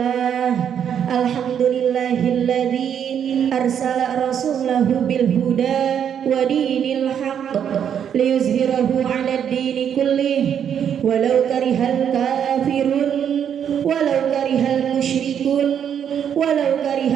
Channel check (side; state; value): left; quieter; 8.6 dB